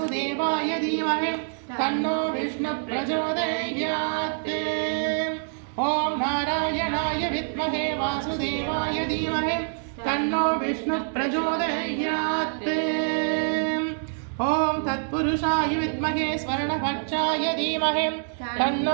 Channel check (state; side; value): silent; left; digital silence